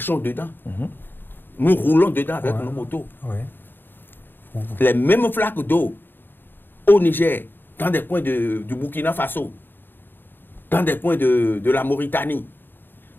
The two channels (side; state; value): right; late; 0.095 ms